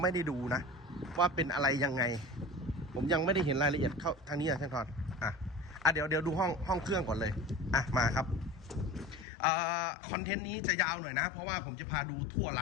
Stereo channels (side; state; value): right; drops out; at 9.2 s